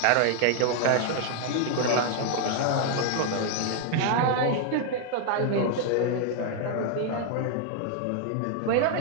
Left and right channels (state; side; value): different; both; correlation 0.00